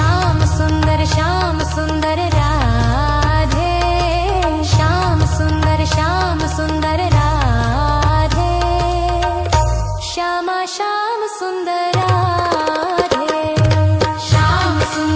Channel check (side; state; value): both; identical; correlation 1.00